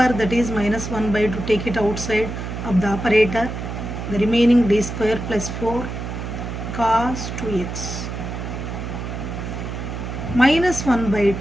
that is minus 1 by 2. Take it outside of the operator. The remaining d square plus 4 cos 2x minus 1 by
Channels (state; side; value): noise; right; hum, 6 dB below the sound